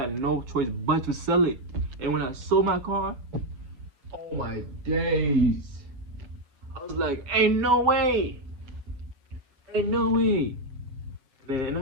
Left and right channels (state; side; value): late; left; 7.7 ms